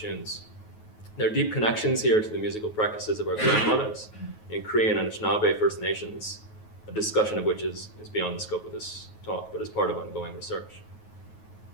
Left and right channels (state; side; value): late; right; 9.3 ms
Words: There are deep connections here to the musical practices of our grandmothers in Cree and Anishinaabe First Nations, a discussion of which is beyond the scope of this talk, but is part of ongoing research.